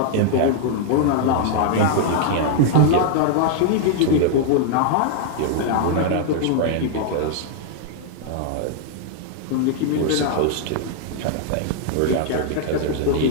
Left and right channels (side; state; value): both; different; correlation -0.01